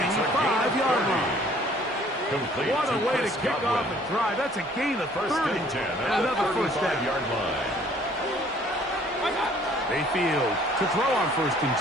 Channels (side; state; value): both; normal; correlation 0.57